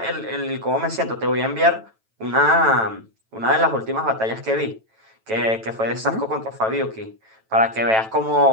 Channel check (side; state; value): left; late; 9.1 ms